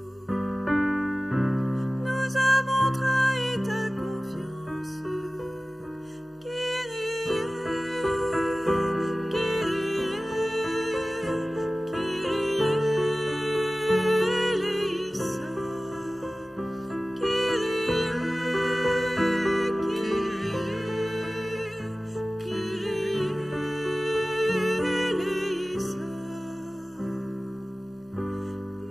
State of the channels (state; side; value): normal; both; correlation 0.97